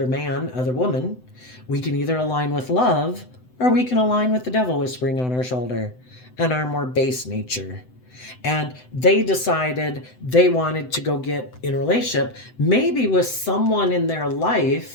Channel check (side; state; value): right; late; 7.9 ms